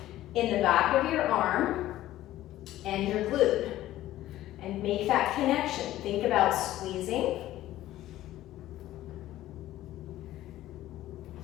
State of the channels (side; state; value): right; quieter; 14.6 dB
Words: in the back of your arm and your glute and make that connection. Think about squeezing.